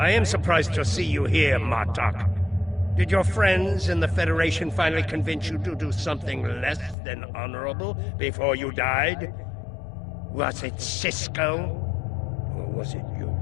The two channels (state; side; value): drops out; right; at 7.0 s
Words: am surprised to see you here, Martok. Did your friends in the Federation finally convince you to do something less than honorable before you died? Was it Cisco? Or was it your